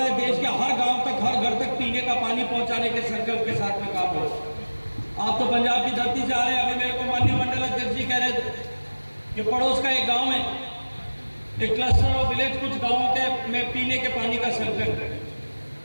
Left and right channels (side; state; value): both; inverted; correlation -1.00